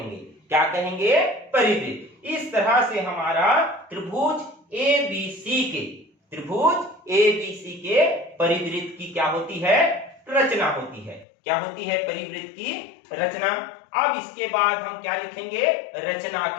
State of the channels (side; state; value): right; drops out; at 11.2 s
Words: क्या कहेंगे, परिवृत्त। इस तरह से हमारा त्रिभुज ए बी सी के परिवृत्त की क्या होती है, रचना होती है। क्या होती है, परिवृत्त की रचना। अब इसके बाद हम क्या लिखेंगे, रचना